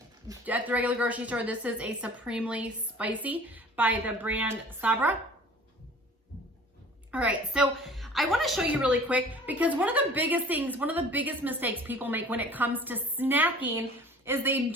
at the regular grocery store. This is a supremely spicy by the brand Sabra. All right, so I want to show you really quick because one of the biggest mistakes people make when it comes to snacking is they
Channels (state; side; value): normal; both; correlation 0.47